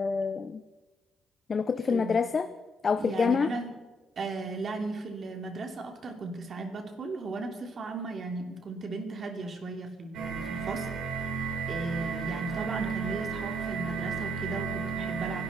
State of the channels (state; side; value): normal; both; correlation 0.72